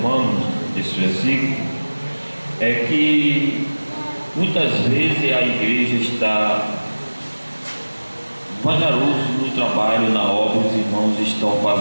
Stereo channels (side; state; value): both; inverted; correlation -1.00